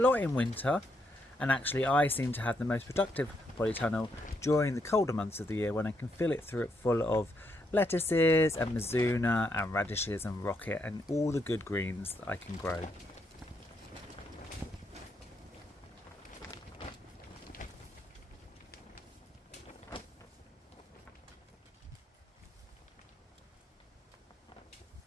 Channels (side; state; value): both; normal; correlation 0.78